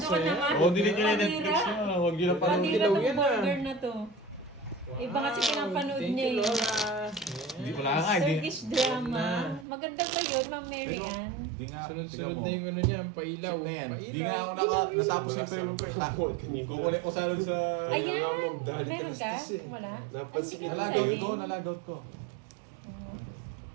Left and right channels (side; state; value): left; drops out; at 9.7 s